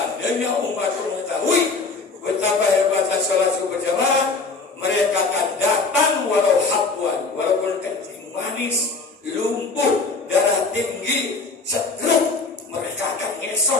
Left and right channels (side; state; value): right; quieter; 4.1 dB